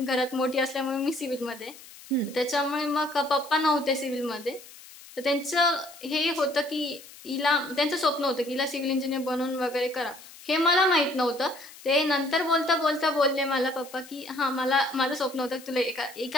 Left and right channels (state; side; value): noise; left; hiss, 19 dB below the sound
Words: घरात मोठी असल्यामुळे मी सिव्हिलमध्ये, त्याच्यामुळे मग पप्पा नव्हते सिव्हिलमध्ये. तर त्यांचं हे होतं की त्यांचं स्वप्न होतं की हिला सिव्हिल इंजिनियर बनवून वगैरे करा. हे मला माहित नव्हतं. ते नंतर बोलता बोलता बोलले मला पप्पा की माझं स्वप्न होतं की तुला